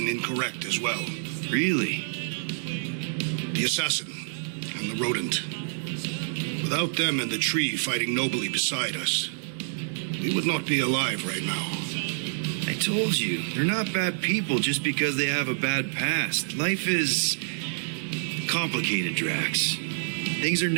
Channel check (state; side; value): silent; left; digital silence